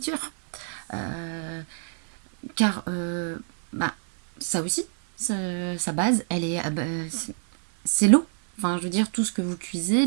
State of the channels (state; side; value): silent; left; digital silence